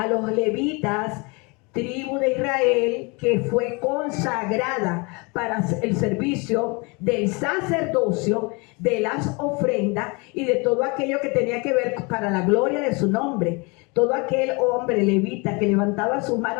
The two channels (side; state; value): right; quieter; 29.1 dB